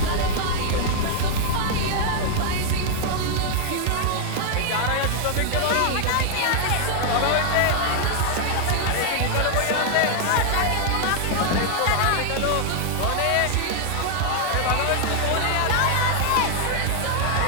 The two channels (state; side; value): different; both; correlation 0.00